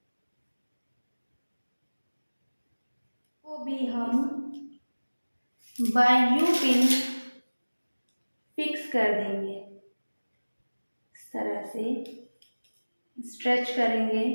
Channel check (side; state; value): both; inverted; correlation -1.00